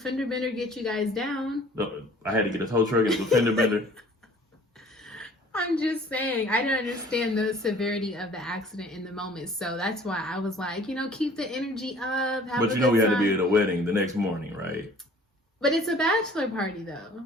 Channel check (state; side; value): normal; both; correlation 0.52